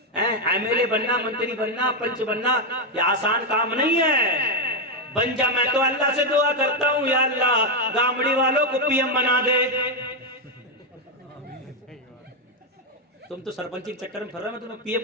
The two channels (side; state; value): both; normal; correlation 0.04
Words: ایم ایل اے بننا, منتری بننا, پنچ بننا یہ آسان کام نہیں ہے. بن جا, میں تو اللہ سے دعا کرتا ہوں یا اللہ گامڑی والوں کو پی ایم بنا دے. تم تو سرپنچی کے چکر میں پھر رہے, میں تمہیں پی